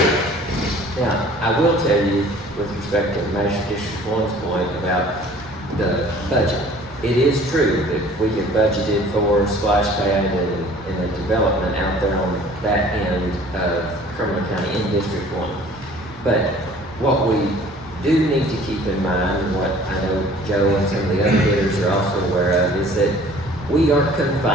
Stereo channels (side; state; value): both; normal; correlation 0.50